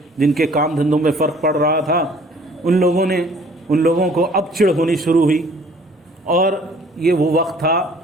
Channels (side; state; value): both; normal; correlation 0.55